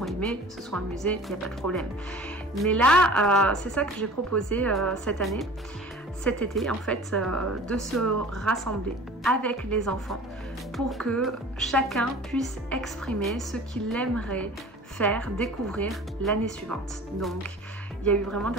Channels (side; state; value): both; normal; correlation 0.43